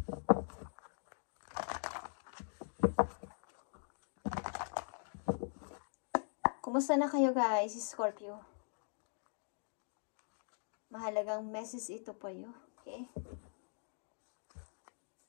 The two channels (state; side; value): silent; right; digital silence